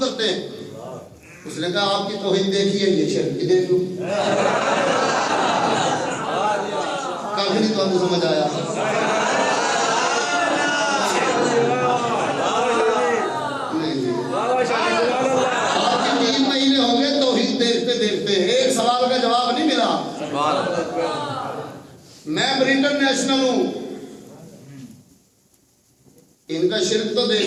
हैं। उसने कहा आपकी तौहीद देखी है, ये शिर्क की देख लो। काफी नहीं तो आपको समझ आया। आपके 3 महीने हो गए तौहीद देखते देखते, एक सवाल का जवाब नहीं मिला। मैं ब्रिटेन नेशनल हूं, इनका शिर्क तो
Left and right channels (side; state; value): both; identical; correlation 1.00